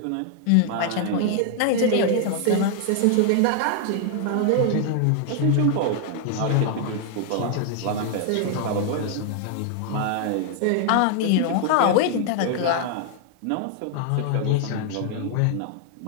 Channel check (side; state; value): both; different; correlation 0.00